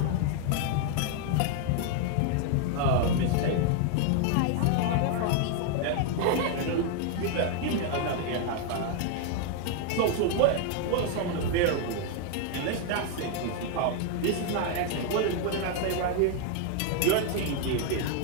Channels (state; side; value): different; both; correlation 0.00